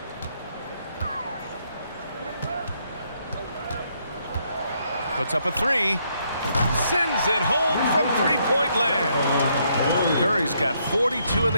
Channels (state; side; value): inverted; both; correlation -0.73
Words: Puts up a three. Sends it home from three-point land. Curry's got 42 in